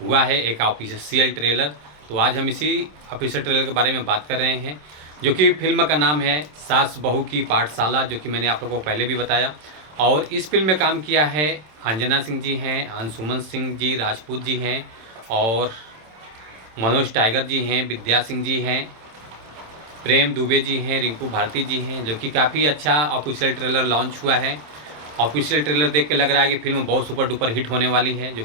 है, एक ऑफिशियल ट्रेलर। तो आज हम इसी ऑफिशियल ट्रेलर के बारे में बात कर रहे हैं, जो कि फिल्म का नाम है सास बहू की पाठशाला, जो कि मैंने आप लोगों को पहले भी बताया। और इस फिल्म में काम किया है अंजना सिंह जी हैं, अंशुमन सिंह जी राजपूत जी हैं, और मनोज टाइगर जी हैं, विद्या सिंह जी हैं, प्रेम दुबे जी हैं, रिंकू भारती जी हैं, जो कि काफ़ी अच्छा ऑफिशियल ट्रेलर लॉन्च हुआ है। ऑफिशियल ट्रेलर देख के लग रहा है कि फिल्म बहुत सुपर डुपर हिट होने वाली है, जो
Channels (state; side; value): late; left; 27 ms